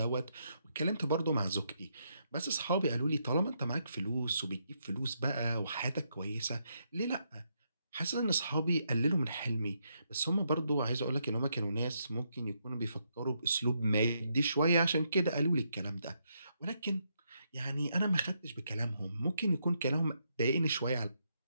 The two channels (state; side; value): inverted; both; correlation -0.79